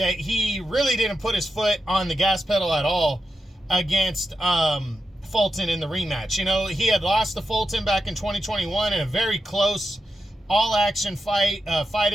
he really didn't put his foot on the gas pedal at all against Fulton in the rematch. You know, he had lost to Fulton back in 2021 in a very close all-action fight, fight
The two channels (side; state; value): both; normal; correlation 0.89